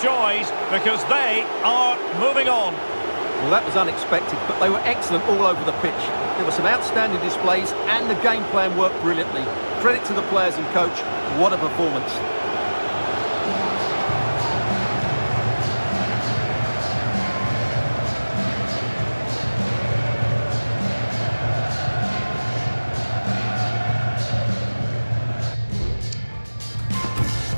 joys because they are moving on. Well, that was unexpected, but they were excellent all over the pitch. There were some outstanding displays and the game plan worked brilliantly. Credit to the players and coach. What a performance.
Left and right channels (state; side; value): inverted; both; correlation -1.00